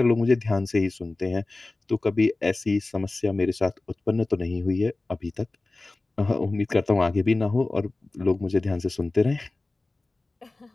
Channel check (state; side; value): quieter; right; 3.2 dB